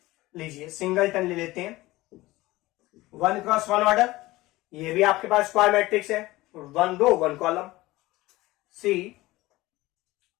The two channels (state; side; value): quieter; right; 18.9 dB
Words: लीजिए, सिंगलटन ले लेते हैं. 1 क्रॉस 1 ऑर्डर, ये भी आपके पास स्क्वायर मैट्रिक्स है, 1 रो 1 कॉलम. C